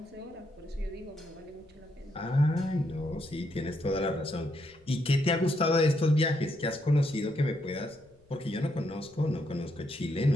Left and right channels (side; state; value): left; noise; rumble, 29 dB below the sound